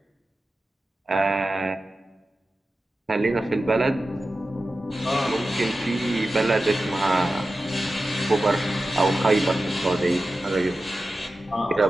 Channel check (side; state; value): both; normal; correlation 0.93